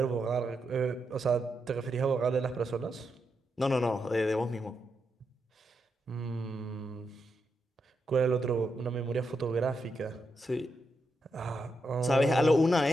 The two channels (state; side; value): normal; both; correlation 0.84